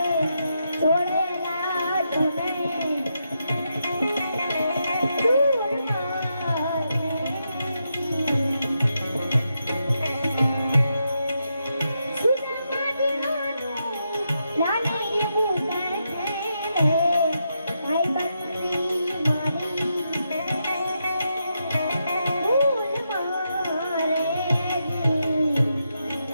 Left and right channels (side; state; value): both; inverted; correlation -0.83